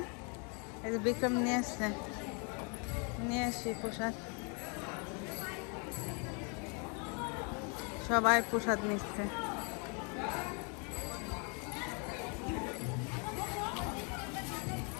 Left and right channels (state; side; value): quieter; right; 35.6 dB